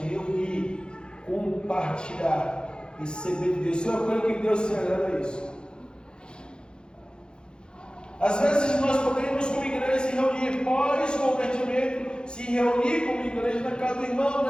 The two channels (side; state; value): right; late; 0.049 ms